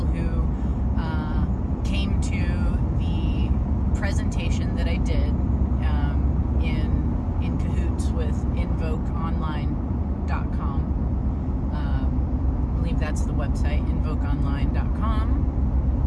came to the presentation that I did in cahoots with invokeonline.com. I believe that's the website,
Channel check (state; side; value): identical; both; correlation 1.00